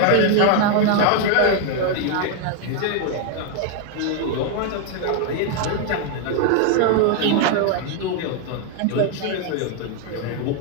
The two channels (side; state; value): both; different; correlation 0.00